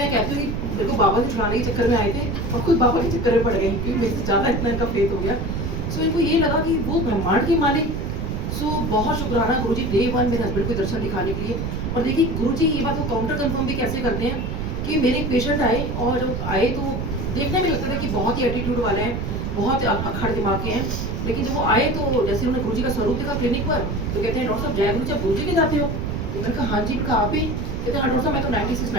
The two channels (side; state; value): right; noise; rumble, 3 dB below the sound